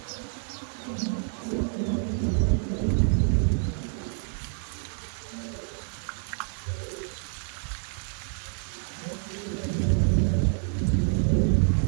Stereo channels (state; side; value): silent; left; 59 dB below the other